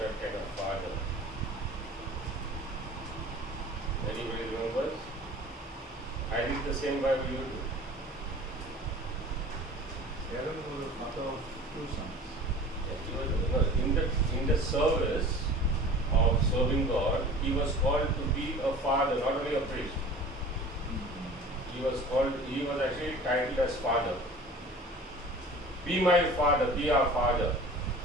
kind of father. Anybody remembers? I read the same Bible you do. Aaron was the father of 2 sons. In the service of serving God, he was called to be a father, not only a priest. He was actually titled as father. Be my father, be our father.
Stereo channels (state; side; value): normal; both; correlation 0.42